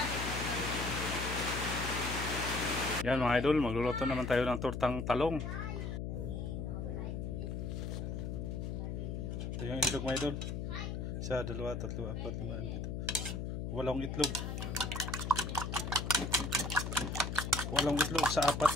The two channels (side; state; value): left; noise; hum, 3 dB below the sound